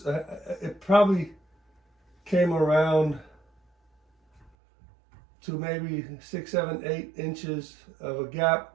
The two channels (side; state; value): left; drops out; at 4.5 s